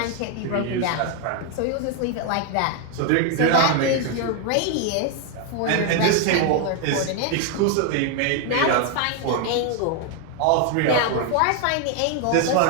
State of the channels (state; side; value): different; both; correlation 0.01